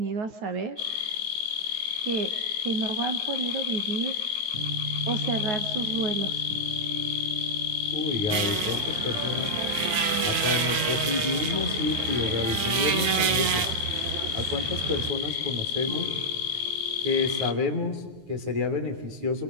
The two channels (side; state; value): left; late; 9.4 ms